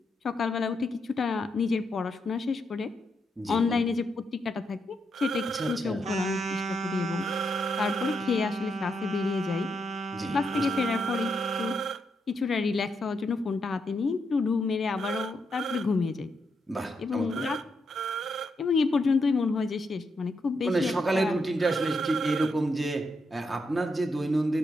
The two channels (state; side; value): normal; both; correlation 0.81